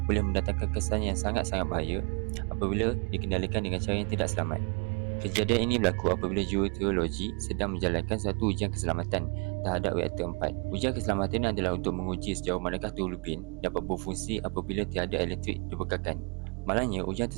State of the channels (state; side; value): quieter; left; 34.0 dB